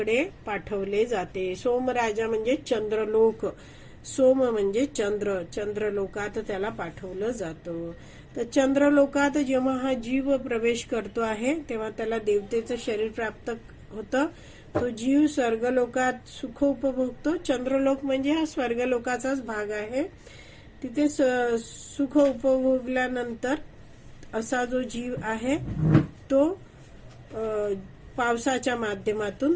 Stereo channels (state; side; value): identical; both; correlation 1.00